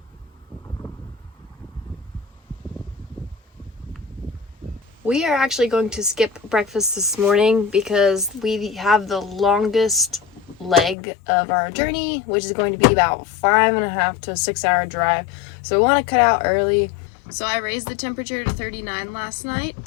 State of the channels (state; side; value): drops out; right; at 11.0 s